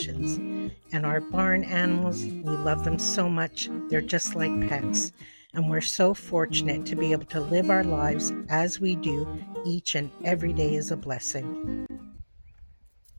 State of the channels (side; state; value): both; inverted; correlation -1.00